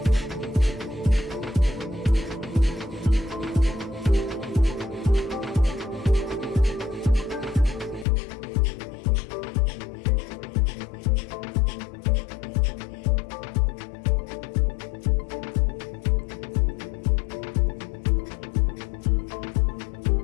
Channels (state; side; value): drops out; right; at 8.1 s